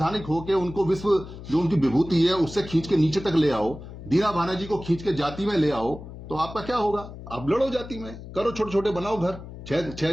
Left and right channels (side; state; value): left; noise; hum, 13 dB below the sound